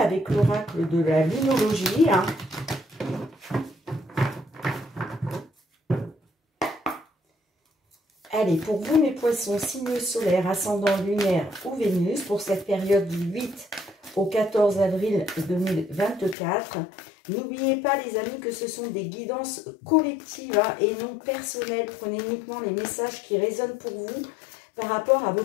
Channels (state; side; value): drops out; right; at 16.4 s